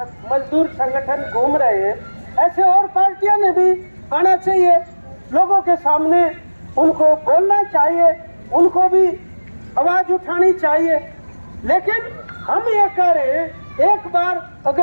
मजदूर संगठन घूम रहे हैं, ऐसे और पार्टियां ने भी आना चाहिए लोगों के सामने, उनको बोलना चाहिए, उनको भी आवाज उठानी चाहिए। लेकिन हम ये कह रहे हैं, एक बार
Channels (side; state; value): both; inverted; correlation -1.00